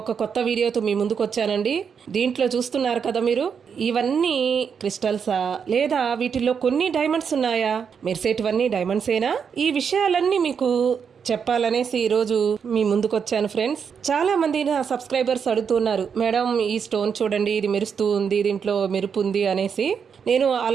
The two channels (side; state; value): left; quieter; 6.7 dB